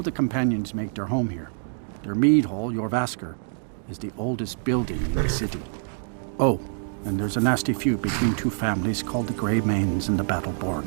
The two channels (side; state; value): left; silent; digital silence